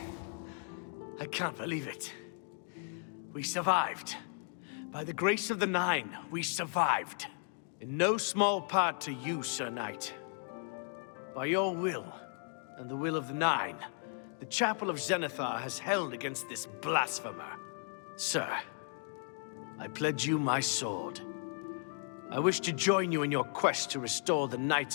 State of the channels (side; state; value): right; silent; 54 dB below the other